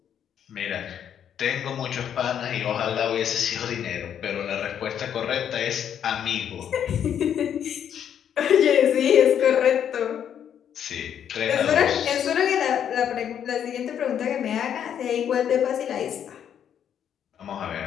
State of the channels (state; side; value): quieter; right; 9.1 dB